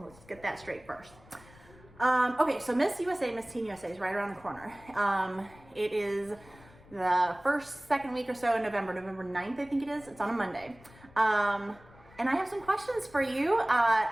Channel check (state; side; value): noise; left; rumble, 24 dB below the sound